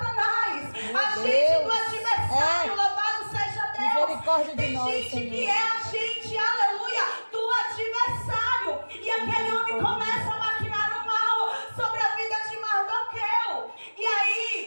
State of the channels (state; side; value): inverted; both; correlation -1.00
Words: agente do adversário, louvado seja Deus. Tem gente que é agente, aleluia, do adversário, e aquele homem começa a maquinar o mal sobre a vida de Mardoqueu. E